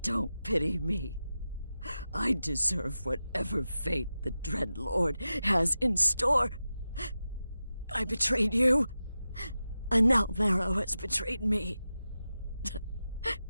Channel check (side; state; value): both; inverted; correlation -0.92